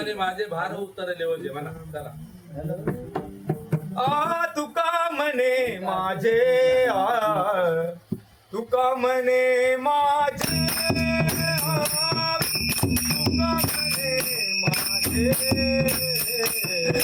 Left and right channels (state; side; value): identical; both; correlation 1.00